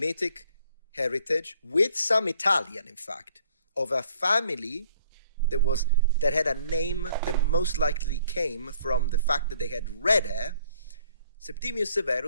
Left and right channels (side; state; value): both; inverted; correlation -0.61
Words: heritage, with some Italian, in fact, of a family that had a name that most likely came from the fact that they had red hair. Septimius